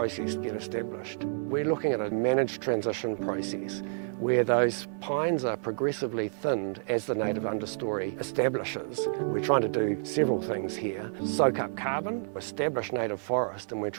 get established. We're looking at a managed transition process where those pines are progressively thinned as the native understory establishes. We're trying to do several things here. Soak up carbon, establish native forest, and we're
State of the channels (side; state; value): left; silent; 58 dB below the other